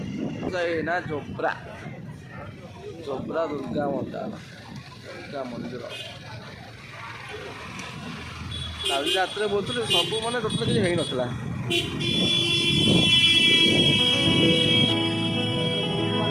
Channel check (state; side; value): identical; both; correlation 1.00